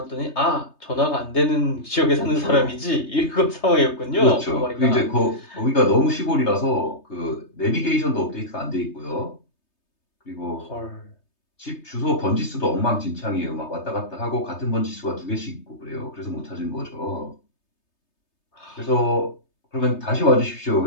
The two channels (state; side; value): late; right; 3.3 ms